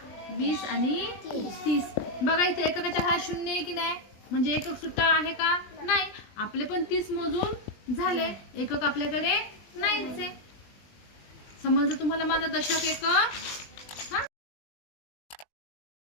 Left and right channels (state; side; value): late; right; 20 ms